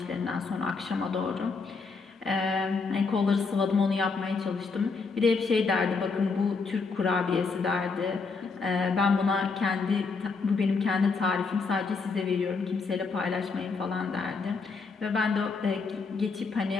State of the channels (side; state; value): right; quieter; 4.5 dB